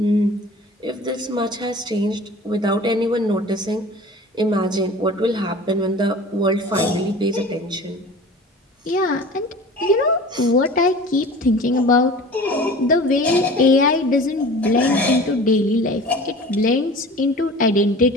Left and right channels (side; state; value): both; normal; correlation 0.40